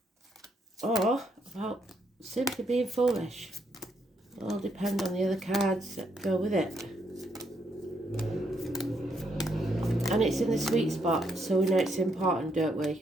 Or about simply being foolish. It'll all depend on the other cards that go with it. And it's in the sweet spot, so we know it's important, don't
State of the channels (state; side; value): normal; both; correlation 0.75